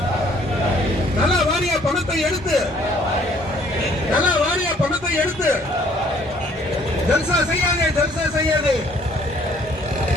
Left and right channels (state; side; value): normal; both; correlation 0.60